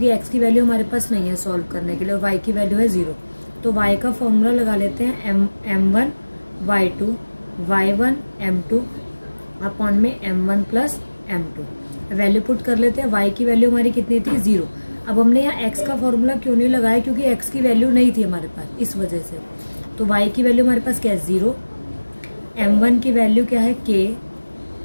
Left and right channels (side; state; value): both; inverted; correlation -1.00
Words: x की वैल्यू हमारे पास नहीं है सॉल्व करने के लिए और y की वैल्यू है 0। तो y का फॉर्मूला लगा लेते हैं m1 y2 y1 m2 upon में m1 plus m2। Value put कर लेते हैं। y की वैल्यू हमारी कितनी थी, 0। अब हमने यहाँ x का फॉर्मूला क्यों नहीं लगाया, क्योंकि x की वैल्यू नहीं थी हमारे पास, इस वजह से। तो y की वैल्यू हमारे पास क्या है, 0। m1 की वैल्यू क्या है, k।